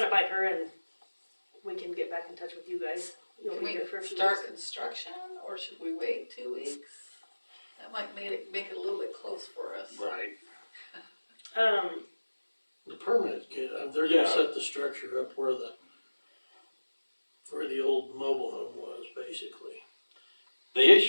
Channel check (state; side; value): inverted; both; correlation -1.00